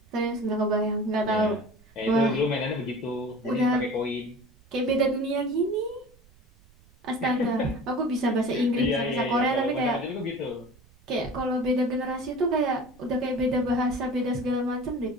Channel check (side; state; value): right; noise; rumble, 28 dB below the sound